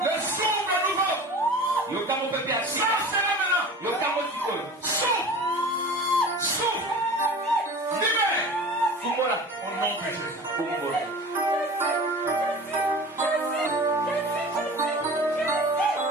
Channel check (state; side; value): normal; both; correlation 0.38